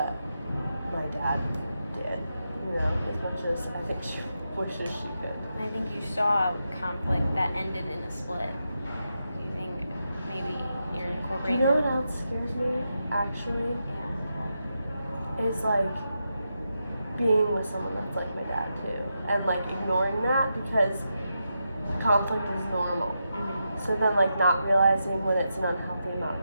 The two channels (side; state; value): both; inverted; correlation -0.86